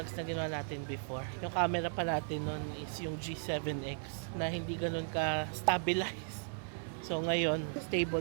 na ginawa natin before. Yung camera pa natin nun is yung G7X na hindi ganun ka-stabilize. So ngayon,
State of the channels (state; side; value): silent; left; digital silence